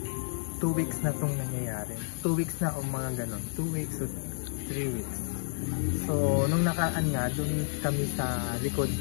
2 weeks na itong nangyayari. 2 weeks na o mga ganon. 2 weeks o 3 weeks. So, nung nakaan nga, doon kami sa likod.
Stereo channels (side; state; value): right; silent; 57 dB below the other